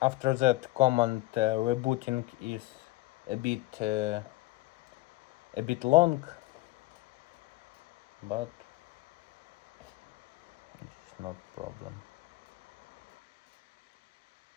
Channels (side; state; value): right; quieter; 19.6 dB